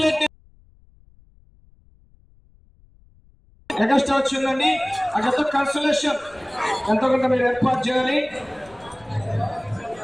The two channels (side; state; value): left; noise; rumble, 29 dB below the sound